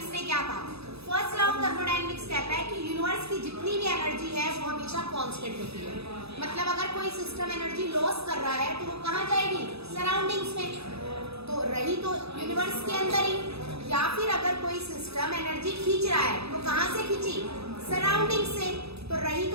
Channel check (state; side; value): late; left; 0.78 ms